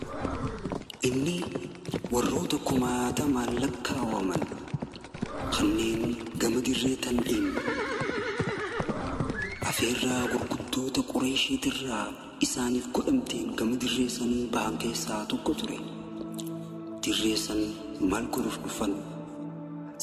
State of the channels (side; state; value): both; identical; correlation 1.00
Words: إني وروتكما تمالكا ومن خنين قمد الريتن إن أفيرا وقدوت قريشي ترى إساني في قدمتين قمد الريسن بانكي ساتو قطري تريسن مالكو رفقفن